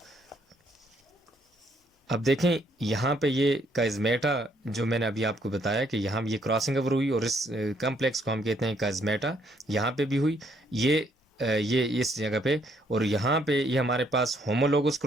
अब देखें यहाँ पे ये काइजमेटा जो मैंने अभी आपको बताया कि यहाँ ये क्रॉसिंग ओवर हुई, और इस कम्प्लेक्स को हम कहते हैं काइजमेटा, यहाँ पे भी हुई ये इस जगह पे, और यहाँ पे ये हमारे पास होमोलोगस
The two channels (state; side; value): normal; both; correlation 0.69